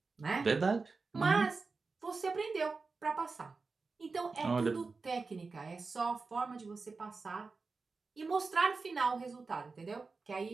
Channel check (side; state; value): left; quieter; 4.2 dB